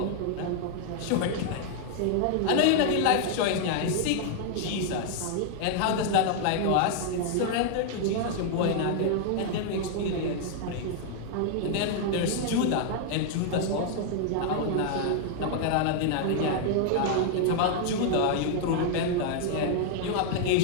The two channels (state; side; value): different; both; correlation 0.00